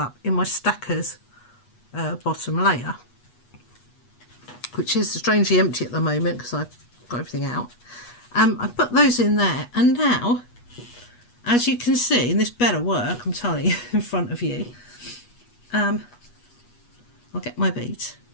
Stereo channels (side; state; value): right; late; 8.3 ms